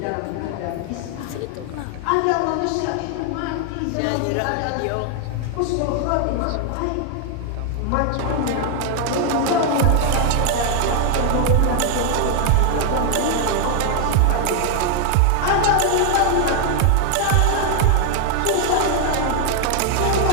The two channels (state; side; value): different; both; correlation 0.00